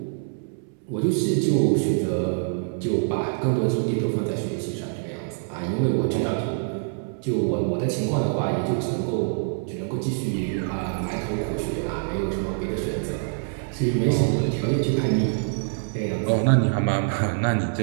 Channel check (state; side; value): silent; left; 62 dB below the other